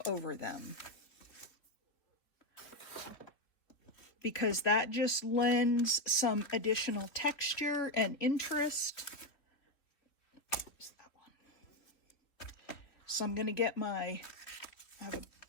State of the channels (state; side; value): late; right; 3.1 ms